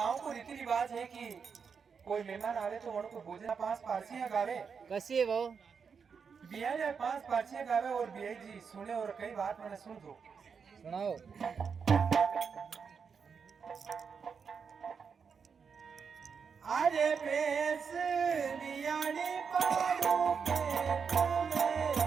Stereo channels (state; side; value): quieter; left; 6.1 dB